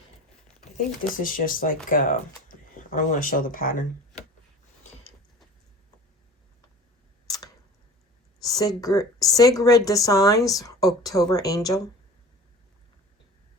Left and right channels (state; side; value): normal; both; correlation 0.41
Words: I think this is just like, I don't want to show the pattern. Sigrid Designs, October Angel.